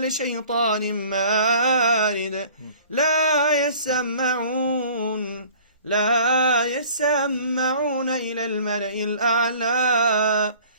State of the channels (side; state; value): both; inverted; correlation -0.49